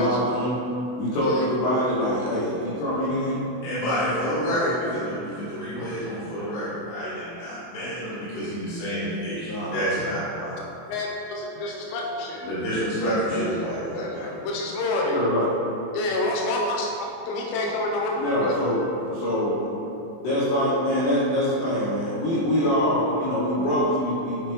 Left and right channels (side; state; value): right; late; 24 ms